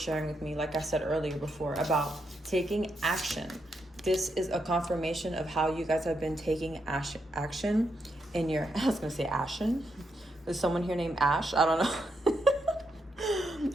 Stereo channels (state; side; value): normal; both; correlation 0.81